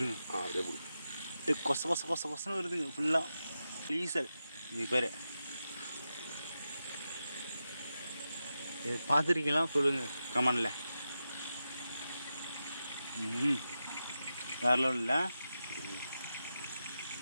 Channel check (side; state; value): both; inverted; correlation -0.90